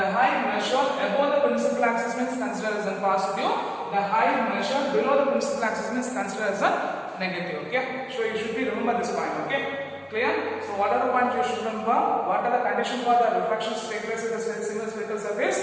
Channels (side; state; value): both; identical; correlation 1.00